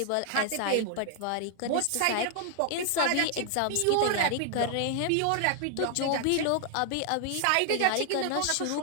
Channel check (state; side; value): different; both; correlation 0.00